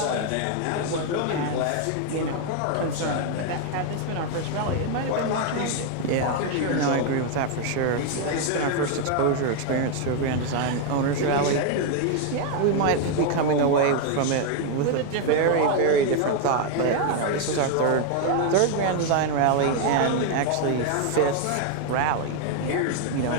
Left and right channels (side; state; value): both; different; correlation 0.00